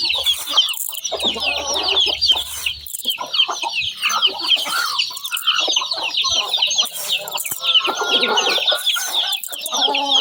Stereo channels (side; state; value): both; identical; correlation 1.00